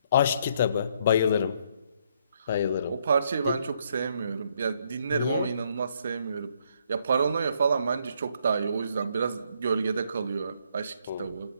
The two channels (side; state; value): both; inverted; correlation -0.70